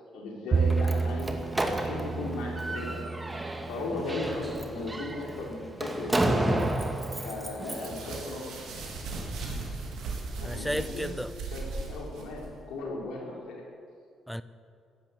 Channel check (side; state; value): both; normal; correlation 0.83